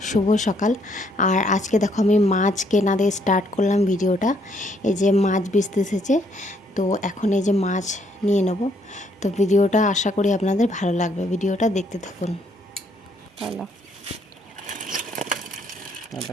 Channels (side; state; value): both; normal; correlation 0.69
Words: শুভ সকাল। আর আজকে দেখো আমি মাছ কেনা দিয়ে স্টার্ট করলাম ভিডিওটা। এই যে মাছ বেচতে এসেছে, তো এখন এই যে মাছ নিয়ে নেব। তো ভিডিওটা আশা করি আপনাদের ভালো লাগবে, ভিডিওটা দেখতে থাকুন। হ্যালো